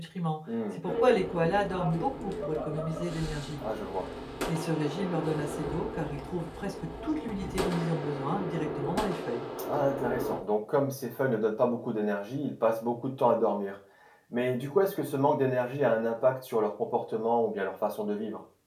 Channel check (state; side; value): identical; both; correlation 1.00